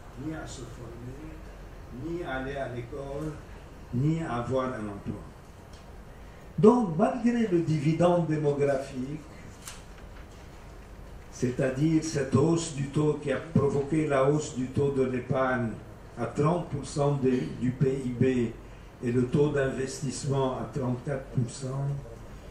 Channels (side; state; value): both; identical; correlation 1.00